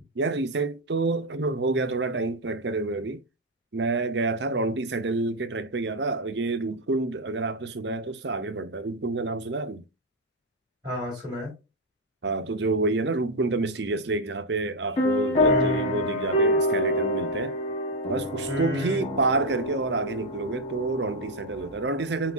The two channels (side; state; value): both; normal; correlation 0.03